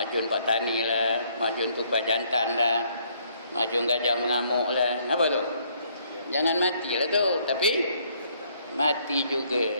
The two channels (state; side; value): inverted; both; correlation -0.67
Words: pak tani lah, majun tupai jantan lah, majun gajah mengamuk lah. Apa tu? Jangan matilah tu, tapi mati juga,